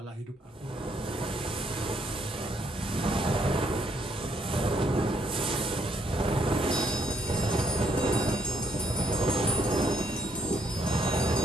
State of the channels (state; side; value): normal; both; correlation 0.72